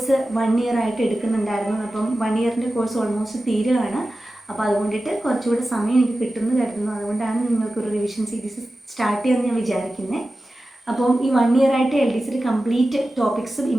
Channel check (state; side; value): normal; both; correlation 0.94